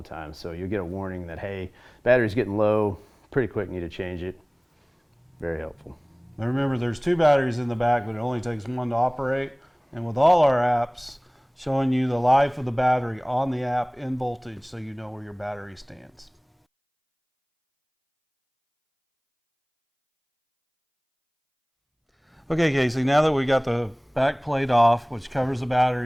time. So you'll get a warning that, hey, battery's getting low, pretty quick, need to change it. Very helpful. Now remember, there's 2 batteries in the back, but it only takes 1 to operate. And with all our apps, showing you the life of the battery on the app in voltage, so you know where your battery stands. Okay, Casey, now that we got the back plate off, which covers the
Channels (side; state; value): both; identical; correlation 1.00